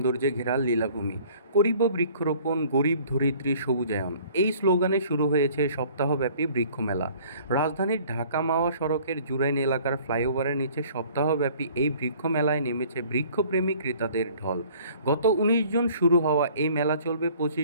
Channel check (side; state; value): both; inverted; correlation -0.53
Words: ঘেরা লীলাভূমি। করিব বৃক্ষরোপণ, গরিব ধরিত্রী সবুজায়ন, এই স্লোগানে শুরু হয়েছে সপ্তাহব্যাপী বৃক্ষমেলা। রাজধানীর ঢাকা মাওয়া সড়কের জুরাইন এলাকার ফ্লাইওভারের নিচে সপ্তাহব্যাপী এই বৃক্ষমেলায় নেমেছে বৃক্ষপ্রেমী ক্রেতাদের ঢল। গত ১৯ জুন শুরু হওয়া এই মেলা চলবে